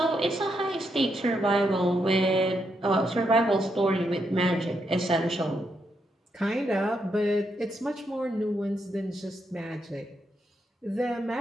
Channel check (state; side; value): normal; both; correlation 0.80